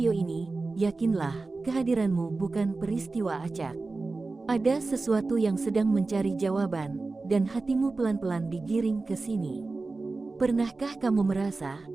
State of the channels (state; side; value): quieter; left; 3.6 dB